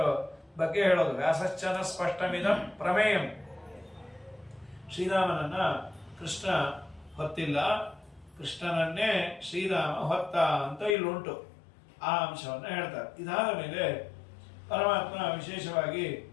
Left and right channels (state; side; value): drops out; right; at 11.0 s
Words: ಬಗ್ಗೆ ಹೇಳೋದು, ವ್ಯಾಸಶ್ಚನ ಸ್ಪಷ್ಟಮಿದಂ ಪ್ರಮೇಯಂ. ಶ್ರೀರಾಮನನ್ನ ಕೃಷ್ಣ ಹೊತ್ತಿಲ್ಲ, ಕೃಷ್ಣನನ್ನೇ ಶ್ರೀರಾಮ ಹೊತ್ತ ಅಂತ ಇಲ್ಲುಂಟು. ಆ ಅಂಶವನ್ನ ಹೇಳ್ತಾರೆ. ಇದಾದ ಮೇಲೆ ಪರಮಾತ್ಮ ವಿಶೇಷವಾಗಿ